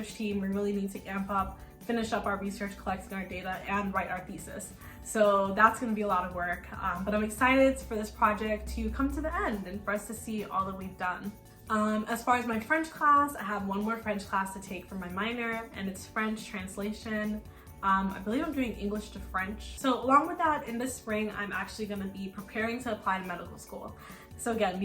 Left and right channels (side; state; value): both; identical; correlation 1.00